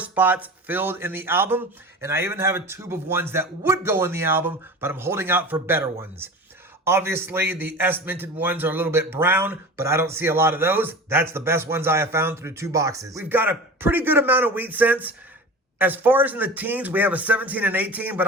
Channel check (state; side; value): normal; both; correlation 0.34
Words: filled in the album. And I even have a tube of ones that would go in the album, but I'm holding out for better ones. Obviously, the S-minted ones are a little bit brown, but I don't see a lot of those. That's the best ones I have found through 2 boxes. We've got a pretty good amount of wheat cents. As far as in the teens, we have a 17 and 18, but